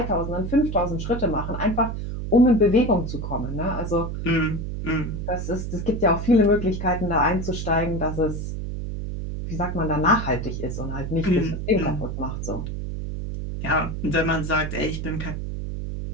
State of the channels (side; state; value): right; noise; hum, 5 dB below the sound